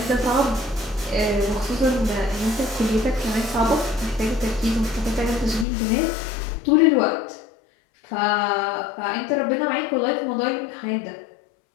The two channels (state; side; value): drops out; right; at 5.7 s